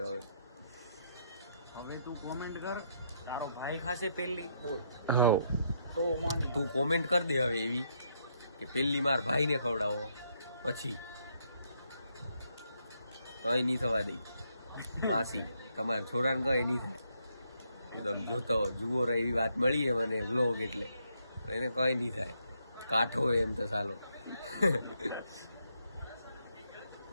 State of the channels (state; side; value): inverted; both; correlation -0.76